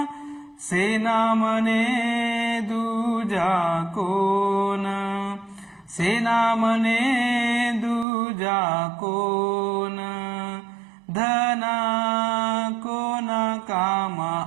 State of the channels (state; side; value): drops out; left; at 8.1 s